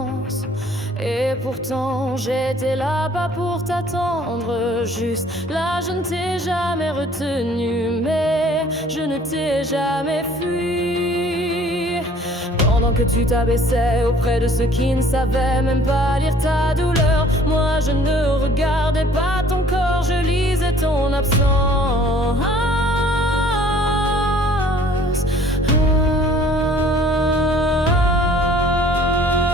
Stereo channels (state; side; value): normal; both; correlation 0.54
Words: et pourtant j'étais là-bas pour t'attendre. Juste là, je ne t'ai jamais retenu, mais je ne t'ai jamais fui. Pendant que tu t'abaissais auprès de ceux qui ne savaient même pas lire ta douleur, moi je ne regardais pas ton corps, je lisais ton absence.